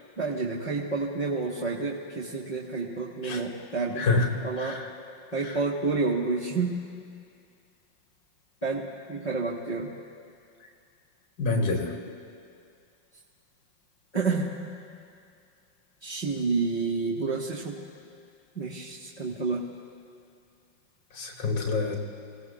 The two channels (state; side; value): late; right; 5.5 ms